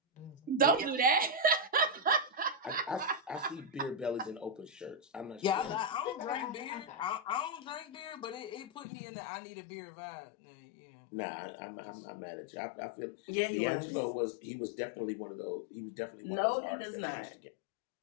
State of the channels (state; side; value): drops out; right; at 8.8 s